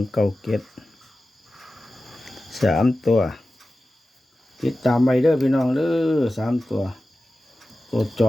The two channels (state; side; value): normal; both; correlation 0.95